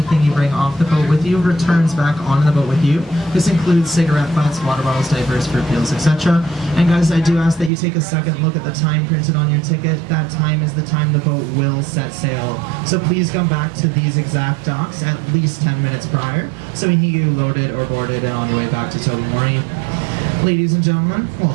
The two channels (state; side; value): drops out; left; at 7.7 s